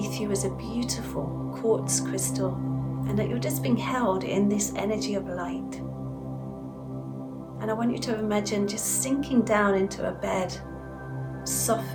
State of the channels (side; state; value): both; identical; correlation 1.00